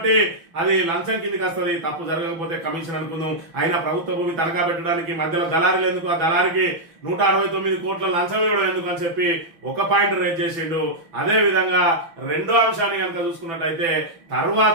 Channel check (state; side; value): late; left; 6.1 ms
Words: అది లంచం కిందకి వస్తుంది, తప్పు జరగకపోతే కమిషన్ అనుకుందాం. అయినా ప్రభుత్వ భూమి తనఖా పెట్టడానికి మధ్యలో దళారులు ఎందుకు, ఆ దళారికి 169 కోట్ల లంచం ఇవ్వడం ఎందుకు అని చెప్పి ఒక పాయింట్ రేజ్ చేసిండు. అదే విధంగా రెండో అంశాన్ని కనుక చూసుకున్నట్టయితే